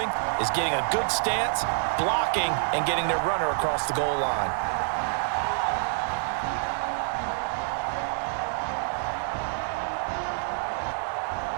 is getting a good stance, blocking, and getting their runner across the goal line.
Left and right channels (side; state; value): left; silent; 60 dB below the other